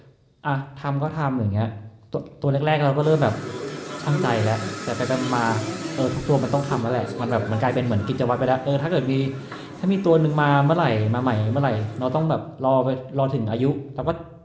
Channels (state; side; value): identical; both; correlation 1.00